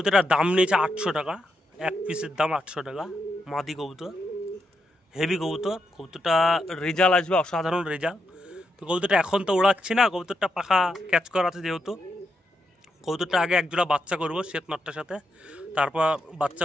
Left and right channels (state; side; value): normal; both; correlation 0.83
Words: দাম নিয়েছে 800 টাকা, এক পিসের দাম 800 টাকা। মাদি কবুতর, হেভি কবুতর, কবুতরটা রেজাল্ট আসবে অসাধারণ রেজাল্ট। তো কবুতরটা এখন তো উড়াচ্ছি না, কবুতরটা পাখা ক্যাচ করা আছে যেহেতু, কবুতরটা আগে এক জোড়া বাচ্চা করবো শ্বেত নটটার সাথে, তারপর বাচ্চা